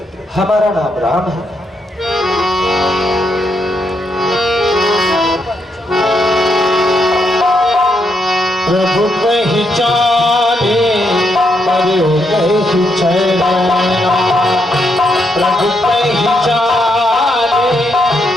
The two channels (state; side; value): normal; both; correlation 0.78